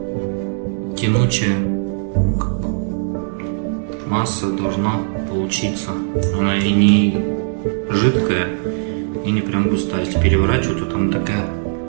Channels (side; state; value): left; silent; digital silence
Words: тянучая масса должна получиться. Она и не жидкая, и не прям густая. Если переворачивать, то там такая